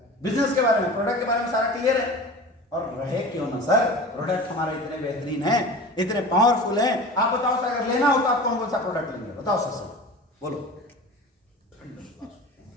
बिजनेस के बारे में, प्रोडक्ट के बारे में सारा क्लियर है। और रहे क्यों ना सर, प्रोडक्ट हमारे इतने बेहतरीन है, इतने पावरफुल है। आप बताओ सर, अगर लेना हो तो आप कौन कौन सा प्रोडक्ट लेंगे? बताओ सर, बोलो।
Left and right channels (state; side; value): normal; both; correlation 0.36